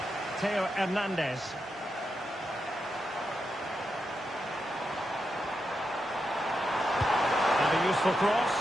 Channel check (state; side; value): normal; both; correlation 0.86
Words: Theo Hernandez. And a useful cross.